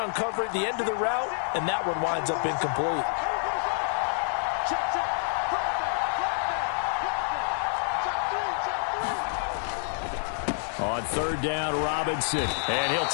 at the end of the route, and that one winds up incomplete. On 3rd down, Robinson. And he'll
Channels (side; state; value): right; silent; 59 dB below the other